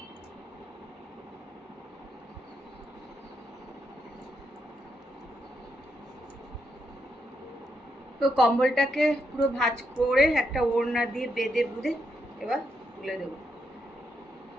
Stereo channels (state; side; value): normal; both; correlation 0.80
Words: তো কম্বলটাকে পুরো ভাঁজ করে একটা ওড়না দিয়ে বেঁধে বুঁধে এবার তুলে দেবো।